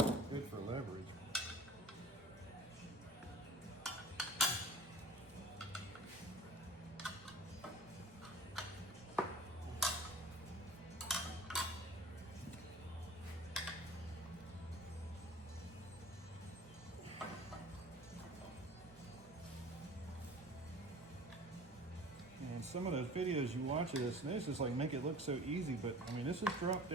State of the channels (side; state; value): both; normal; correlation 0.43